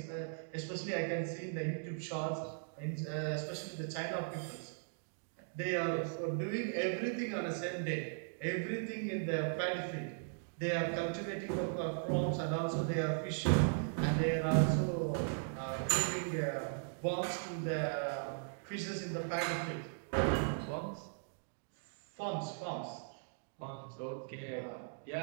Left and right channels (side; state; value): left; silent; digital silence